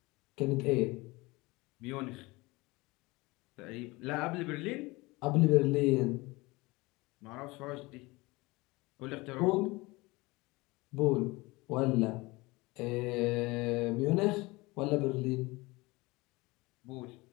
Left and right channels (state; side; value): quieter; right; 22.9 dB